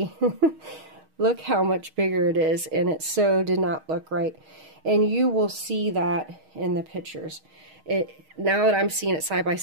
look how much bigger it is, and it so did not look right. And you will see that in the pictures. Now that I'm seeing it side by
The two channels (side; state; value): left; late; 6.4 ms